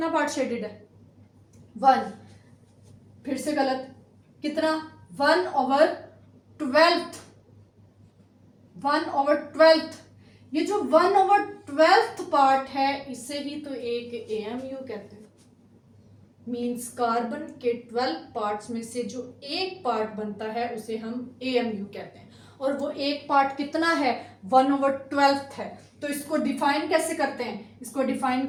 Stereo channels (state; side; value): identical; both; correlation 1.00